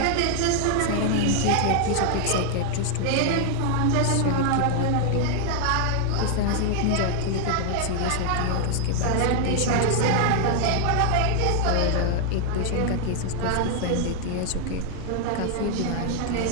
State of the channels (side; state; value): both; different; correlation 0.00